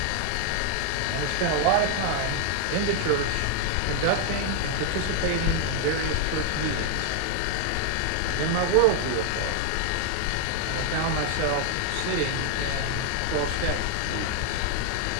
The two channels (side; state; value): both; different; correlation 0.00